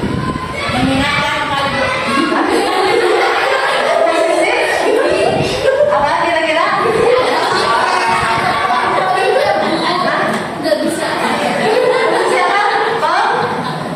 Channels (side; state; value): both; identical; correlation 1.00